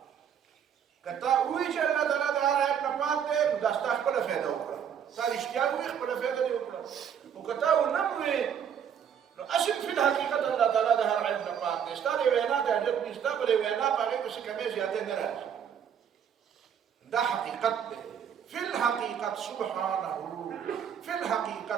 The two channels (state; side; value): quieter; left; 8.3 dB